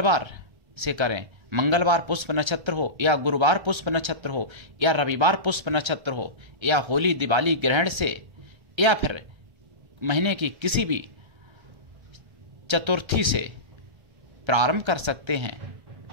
से करें, मंगलवार पुष्प नक्षत्र हो या गुरुवार पुष्प नक्षत्र हो या रविवार पुष्प नक्षत्र हो या होली दिवाली ग्रहण से या फिर महीने की किसी भी चतुर्थी से प्रारंभ कर सकते हैं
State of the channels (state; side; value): late; left; 1.3 ms